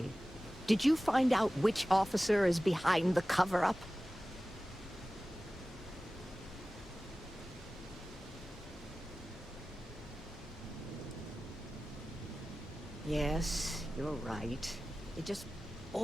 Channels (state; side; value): normal; both; correlation 0.96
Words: Did you find out which officer is behind the cover-up? Yes, you're right. It just